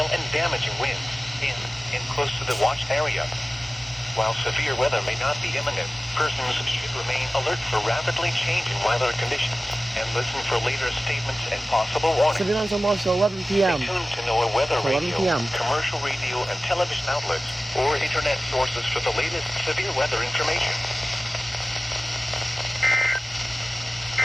and damaging winds in and close to the watch area. While severe weather may not be imminent, persons should remain alert for rapidly changing weather conditions and listen for later statements and possible warnings. Severe thunderstorm watch till 11 p.m. Stay tuned to know weather 11 radio, p.m. commercial radio and television outlets, or internet sources for the latest severe weather information.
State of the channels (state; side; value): normal; both; correlation 0.96